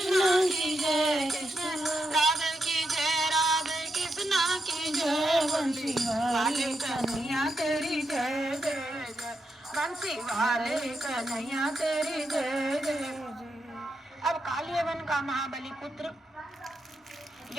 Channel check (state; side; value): normal; both; correlation 0.84